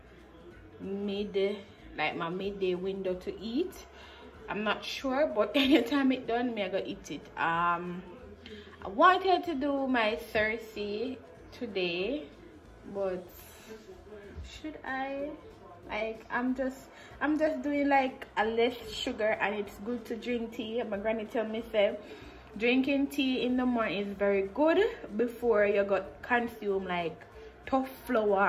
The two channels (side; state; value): both; identical; correlation 1.00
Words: midday, like my midday window to eat. I'm not sure, but anytime it done, me I go eat it. I wanted to do my Thursday today, but should I? Like, I'm just doing like a less sugar, and it's good to drink tea. My granny tell me say drinking tea in the morning is very good before you got consume like tough